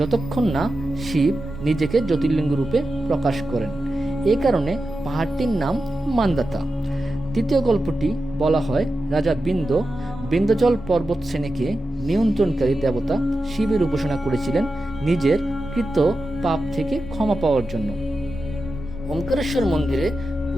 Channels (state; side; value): normal; both; correlation 0.91